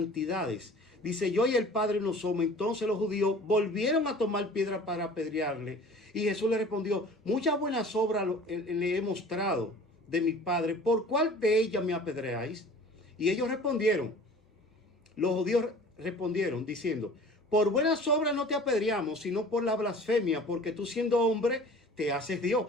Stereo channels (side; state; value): both; normal; correlation 0.45